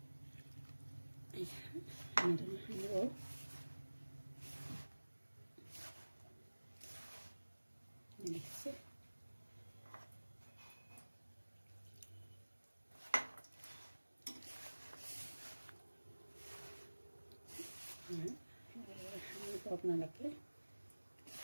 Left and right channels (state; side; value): inverted; both; correlation -1.00